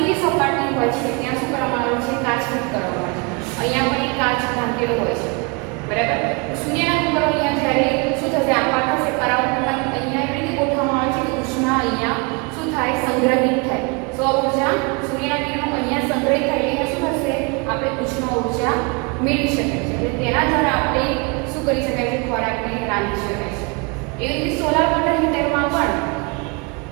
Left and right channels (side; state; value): left; quieter; 30.5 dB